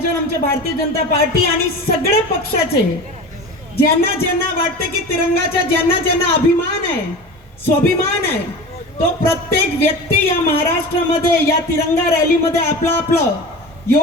आमच्या भारतीय जनता पार्टी आणि सगळे पक्षाचे ज्यांना ज्यांना वाटतं की तिरंगाचा ज्यांना ज्यांना अभिमान आहे, स्वाभिमान आहे, तो प्रत्येक व्यक्ती या महाराष्ट्रामध्ये या तिरंगा रॅलीमध्ये आपलं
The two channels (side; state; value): both; normal; correlation 0.32